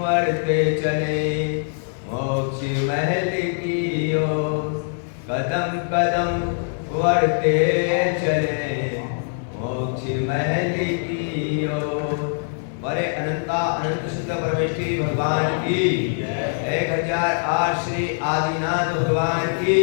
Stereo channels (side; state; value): right; silent; 61 dB below the other